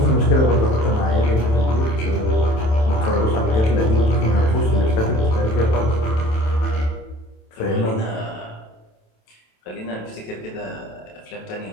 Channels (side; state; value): right; late; 27 ms